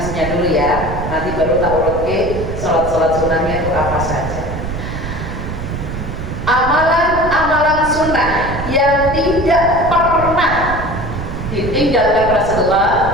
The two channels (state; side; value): noise; right; rumble, 6 dB below the sound